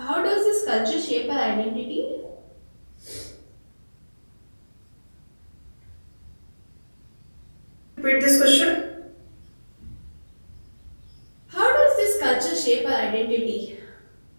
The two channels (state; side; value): inverted; both; correlation -1.00